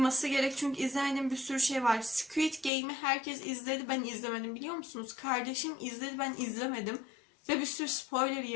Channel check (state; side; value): drops out; right; at 2.7 s